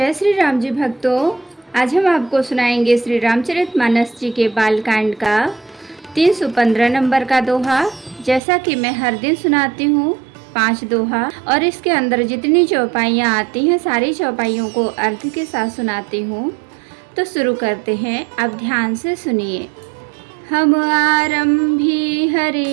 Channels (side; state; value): left; drops out; at 8.4 s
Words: श्री राम जी भक्तों। आज हम आपको सुनाएंगे श्री रामचरितमानस जी के बालकांड का 315 नंबर का दोहा। जैसा कि मैं हर दिन सुनाती हूँ 5 दोहा, और इसके अंदर जितनी चौपाइयाँ आती हैं सारी चौपाइयों को अर्थ के साथ सुनाती हूँ। तो शुरू करते हैं, आप ध्यान से सुनिए। हम आरंभी